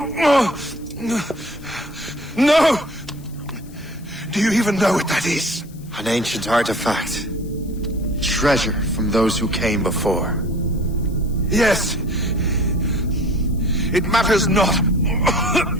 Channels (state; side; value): noise; left; hiss, 24 dB below the sound